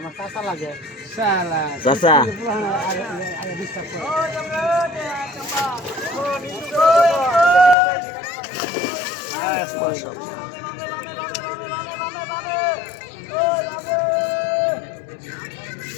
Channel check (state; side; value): drops out; right; at 7.8 s